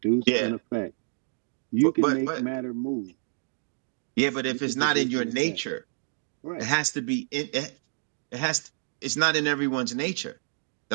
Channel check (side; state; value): left; silent; digital silence